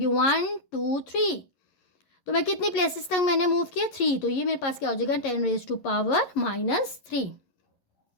1 2 3। तो मैं कितनी प्लेसेस तक मैंने मूव किया 3, तो ये मेरे पास क्या हो जाएगा 10 रेज़ टू पावर -3।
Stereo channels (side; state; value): right; late; 11 ms